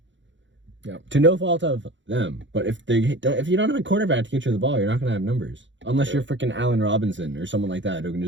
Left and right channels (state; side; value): late; left; 0.54 ms